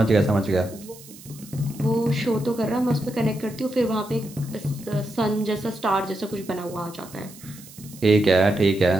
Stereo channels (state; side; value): noise; right; hiss, 19 dB below the sound